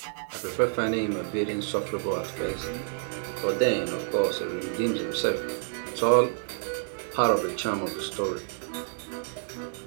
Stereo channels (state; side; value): silent; left; 59 dB below the other